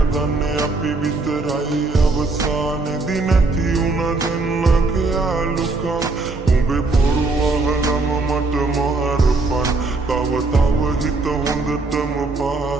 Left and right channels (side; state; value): left; quieter; 3.5 dB